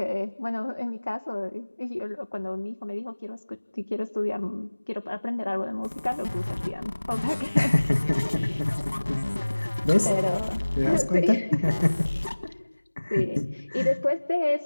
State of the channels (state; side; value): inverted; both; correlation -1.00